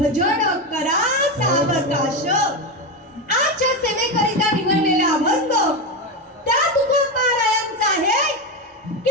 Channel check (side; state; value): both; normal; correlation 0.14